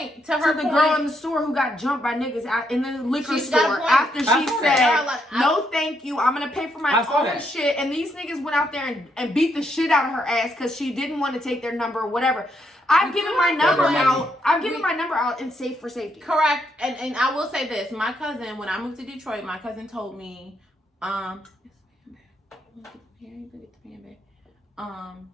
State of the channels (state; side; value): normal; both; correlation 0.77